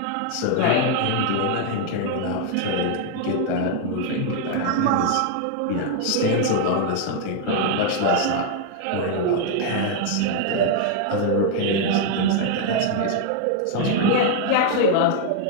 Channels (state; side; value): different; both; correlation 0.00